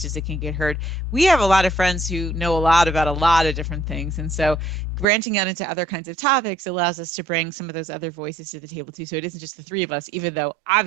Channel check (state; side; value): drops out; left; at 5.1 s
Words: that can get heard. We have a lot of friends who know a lot about a lot of different things, and so branching out into other kinds of topics allows us to bring some of those other voices to the table too. So it isn't just the three of us, even though